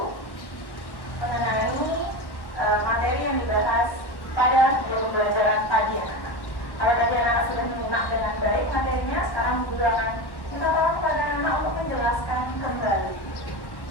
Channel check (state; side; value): late; right; 1.1 ms